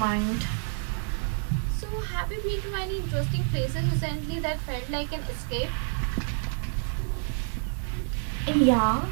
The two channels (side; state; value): left; silent; 58 dB below the other